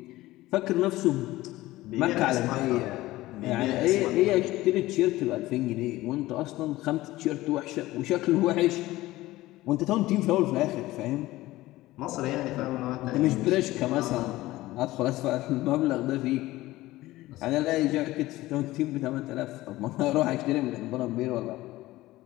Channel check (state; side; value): quieter; right; 17.5 dB